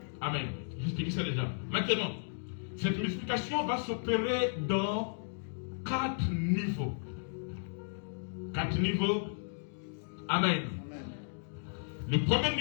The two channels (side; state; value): right; silent; digital silence